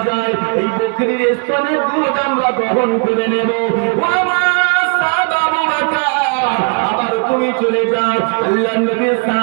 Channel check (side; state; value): left; quieter; 37.7 dB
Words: যায়, এই বকরির স্তনের দুধ আমরা গ্রহণ করে নেব। ও আমার সাহাবা আবু বকর, আবার তুমি চলে যাও। আল্লাহ নবীর